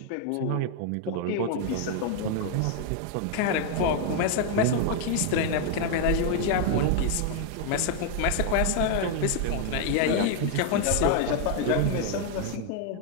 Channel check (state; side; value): different; both; correlation 0.00